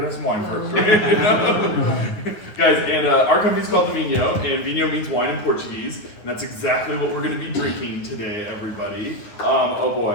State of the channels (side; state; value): right; late; 9.6 ms